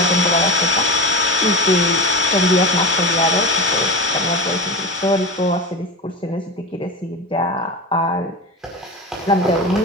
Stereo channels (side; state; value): both; normal; correlation 0.26